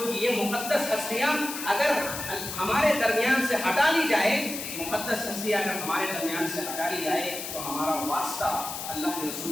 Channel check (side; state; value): left; noise; hiss, 7 dB below the sound